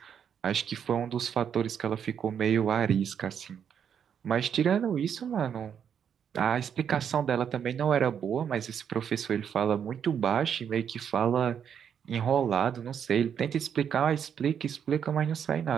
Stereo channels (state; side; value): quieter; left; 8.1 dB